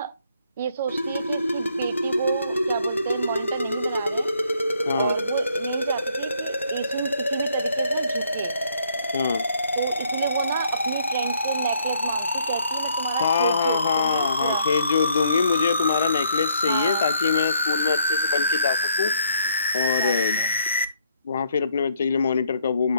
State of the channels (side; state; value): both; inverted; correlation -0.68